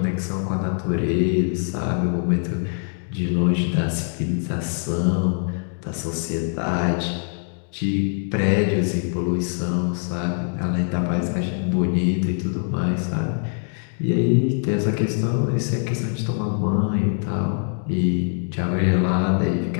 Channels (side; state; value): right; silent; 57 dB below the other